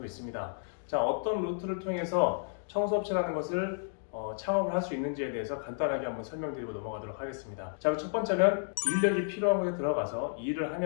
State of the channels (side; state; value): right; silent; digital silence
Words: 있습니다. 자, 어떤 루트를 통해서 청소업체라는 것을 창업을 할 수 있는지에 대해서 간단하게 한번 설명드리고 넘어가도록 하겠습니다. 자, 첫 번째는 인력이 필요한 곳에 들어가서 일을